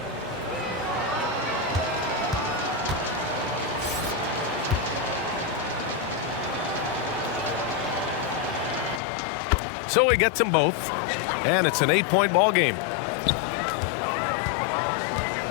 So he gets them both, and it's an 8-point ball game.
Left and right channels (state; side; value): drops out; right; at 9.0 s